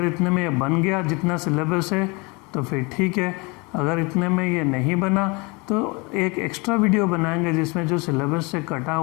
इतने में ये बन गया जितना सिलेबस है तो फिर ठीक है, अगर इतने में ये नहीं बना तो एक एक्स्ट्रा वीडियो बनाएंगे जिसमें जो सिलेबस से कटा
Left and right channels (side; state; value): right; quieter; 28.2 dB